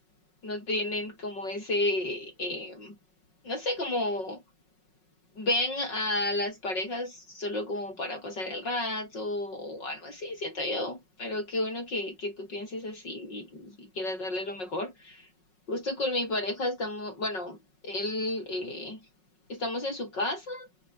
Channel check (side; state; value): right; late; 5.4 ms